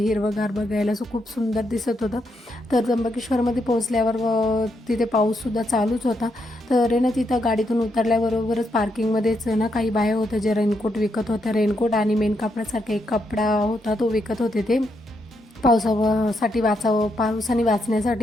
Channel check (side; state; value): both; normal; correlation 0.79